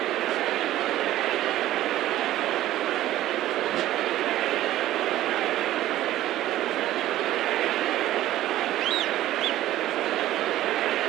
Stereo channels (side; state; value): left; quieter; 14.3 dB